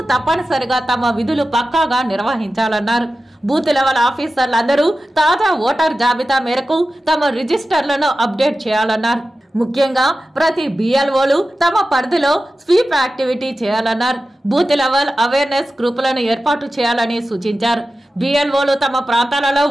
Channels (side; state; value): both; normal; correlation 0.94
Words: తప్పనిసరిగా తమ విధులు పక్కాగా నిర్వహించాలన్నారు. బూత్ లెవెల్ ఆఫీసర్లందరూ తాజా ఓటర్ జాబితా మేరకు తమ రిజిస్టర్లను అప్డేట్ చేయాలన్నారు. ముఖ్యంగా ప్రతి బిఎల్ఓలు తమ పరిధిలో స్వీప్ యాక్టివిటీ చేయాలన్నారు. బూత్ లెవెల్ అవేర్నెస్ గ్రూపులను ఏర్పాటు చేయాలని సూచించారు. బిఎల్ఓలు తమ ప్రాంతాలలో